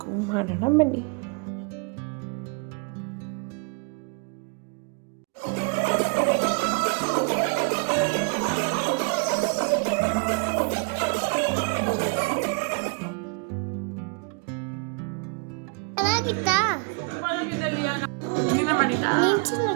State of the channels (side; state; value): left; quieter; 36.8 dB